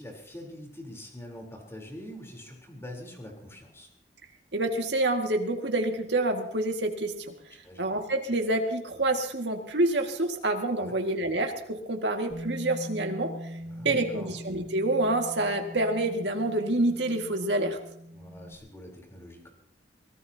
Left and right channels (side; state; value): both; normal; correlation 0.10